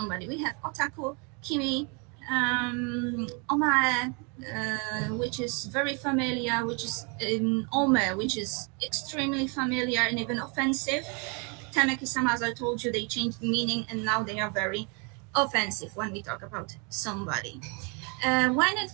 we have otaku, kimi, omae, which is very familiar, which is ome, which is extremely familiar and even offensive. Tanaki-sama, as I told you, they changed meaning and now they are very offensive when we talk about somebody. When it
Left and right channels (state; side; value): quieter; left; 33.8 dB